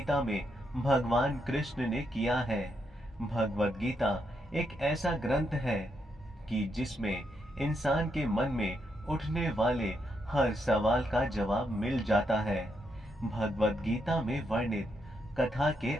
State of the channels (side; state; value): both; normal; correlation 0.80